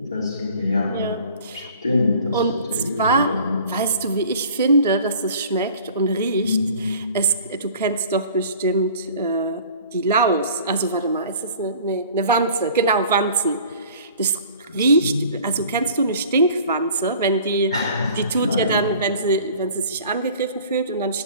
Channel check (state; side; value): inverted; both; correlation -0.47